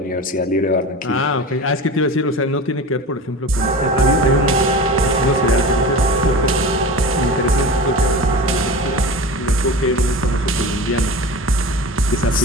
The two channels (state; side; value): normal; both; correlation 0.31